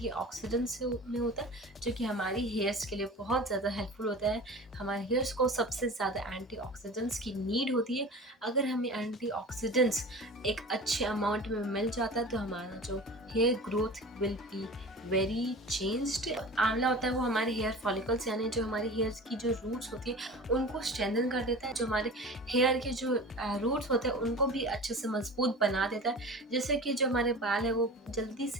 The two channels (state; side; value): normal; both; correlation 0.36